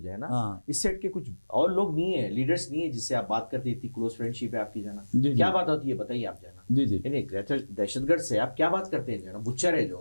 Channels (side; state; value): both; inverted; correlation -1.00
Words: ہے نا اس سیٹ کے کچھ اور لوگ نہیں ہیں, لیڈرز نہیں ہیں جس سے آپ بات کرتے, اتنی کلوز فرینڈ شپ ہے آپ کی, جو ہے نا کیا بات ہوتی ہے بتائیے آپ, جو ہے نا یعنی دہشت گرد سے آپ کیا بات کرتے ہیں, جو ہے نا بچر ہے